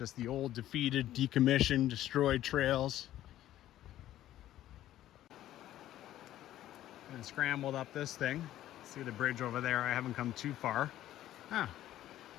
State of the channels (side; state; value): right; quieter; 13.2 dB